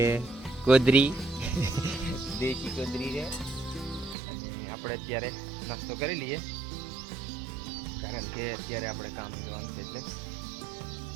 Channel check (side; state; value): left; drops out; at 4.2 s